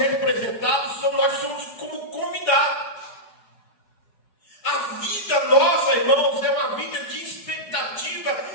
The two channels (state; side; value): late; right; 4.8 ms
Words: nós somos como convidados. A vida nossa, irmãos, é uma vida de expectativa